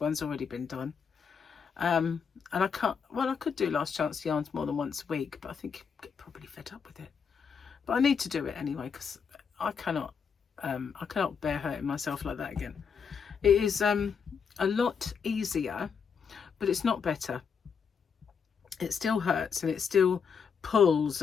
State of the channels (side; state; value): right; quieter; 6.4 dB